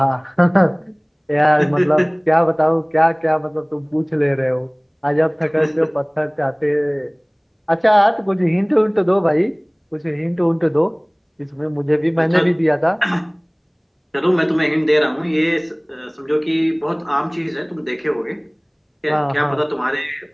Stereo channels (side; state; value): both; identical; correlation 1.00